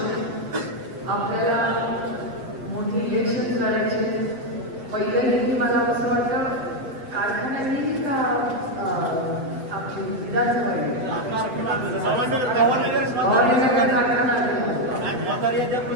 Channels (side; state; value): left; late; 7.9 ms